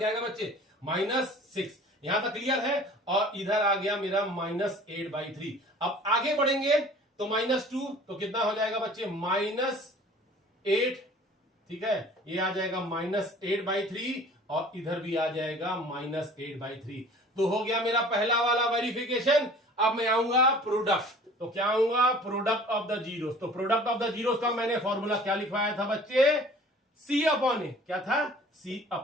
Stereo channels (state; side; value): normal; both; correlation 0.47